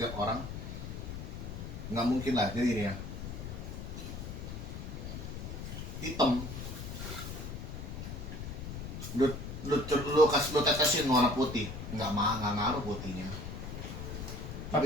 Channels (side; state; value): left; noise; rumble, 7 dB below the sound